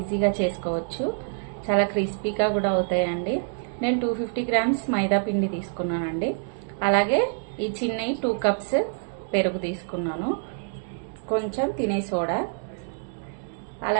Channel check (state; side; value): silent; left; digital silence